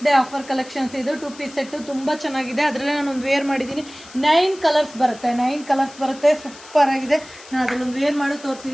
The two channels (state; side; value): noise; left; hiss, 19 dB below the sound